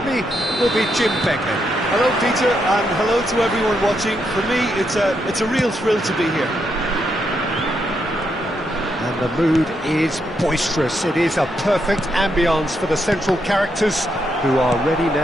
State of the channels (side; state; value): both; normal; correlation 0.80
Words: me will be Jim Becker. Hello, Peter, and hello to everyone watching. For me, it's a real thrill to be here. And the mood is boisterous. It is a perfect ambience for the central characters who are ready